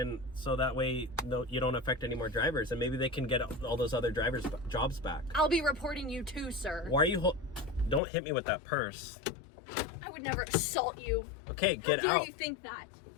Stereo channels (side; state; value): right; drops out; at 8.0 s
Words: so that way, you don't affect any more drivers, and maybe they can get all those other drivers' jobs back. I'll be reporting you too, sir. Why are you? Don't hit me with that purse. I would never assault you. Okay, get How dare out. you think that?